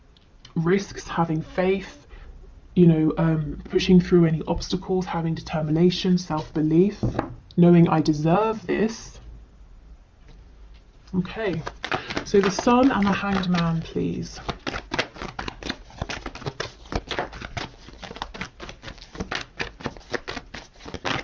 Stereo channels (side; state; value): both; identical; correlation 1.00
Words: risks, having faith, pushing through any obstacles, having determination, self-belief, knowing I deserve this. Okay, so the Sun and the Hanged Man, please.